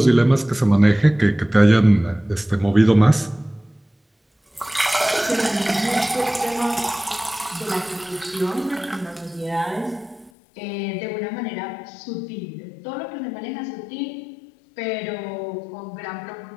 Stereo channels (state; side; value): drops out; right; at 10.3 s